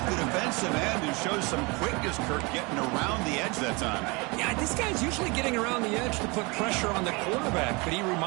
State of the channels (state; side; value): quieter; left; 27.5 dB